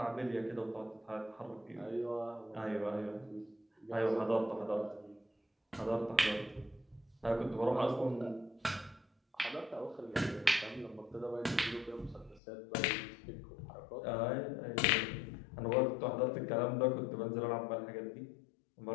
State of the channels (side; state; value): right; drops out; at 12.4 s